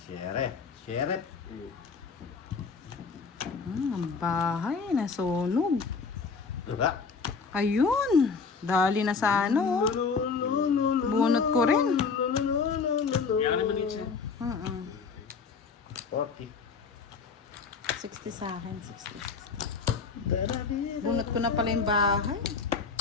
Sheriff. Sheriff. Ang bahay, nasunog. Diba? Ayun. Dali na sa ano. Bunot ko rin. Yan naman yun siya. 40. 60 sa akin, 60. Bunot ko na pala yung bahay.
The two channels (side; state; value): right; quieter; 5.1 dB